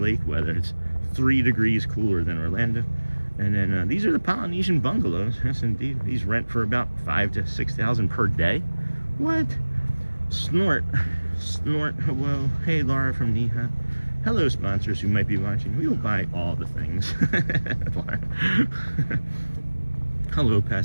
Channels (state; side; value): inverted; both; correlation -1.00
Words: weather. It's 3 degrees cooler than Orlando. And then these are the Polynesian bungalows. Yes, indeed. These rent for about $5,000 to $6,000 per day. What? Snort. Hello. Hey, Laura from Neha. Hello, sponsors who might be watching. We will buy all the things. Hello,